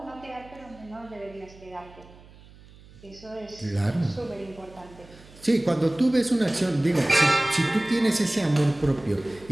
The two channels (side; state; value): right; noise; hum, 23 dB below the sound